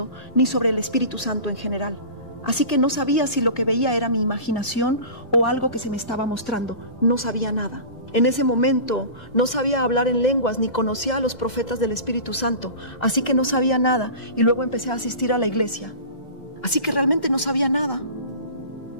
ni sobre el Espíritu Santo en general. Así que no sabía si lo que veía era mi imaginación o algo que se me estaba mostrando. No sabía nada. En ese momento no sabía hablar en lenguas ni conocía a los profetas del Espíritu Santo. Así que no sabía nada y luego empecé a asistir a la iglesia. Así que realmente no sabía nada.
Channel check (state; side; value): late; right; 2.1 ms